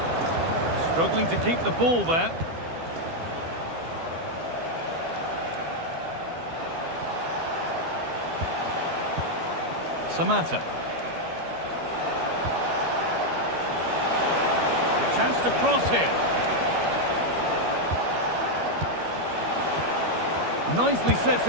Struggling to keep the ball there. Samata. A chance to cross here. Nicely sets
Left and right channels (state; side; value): late; left; 12 ms